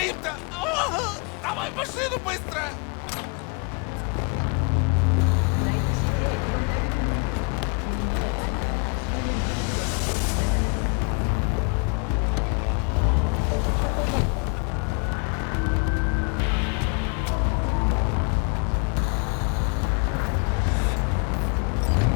Давай в машину быстро!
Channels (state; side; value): quieter; right; 35.2 dB